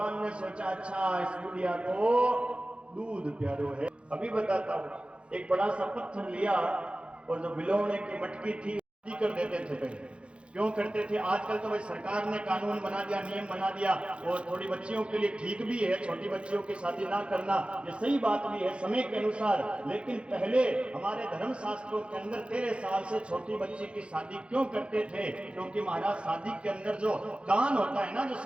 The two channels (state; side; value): late; left; 0.058 ms